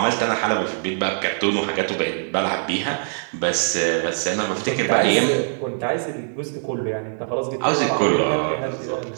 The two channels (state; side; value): silent; left; 64 dB below the other